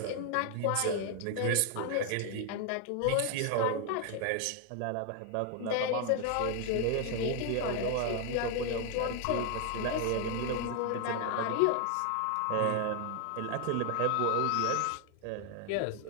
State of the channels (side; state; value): both; different; correlation 0.00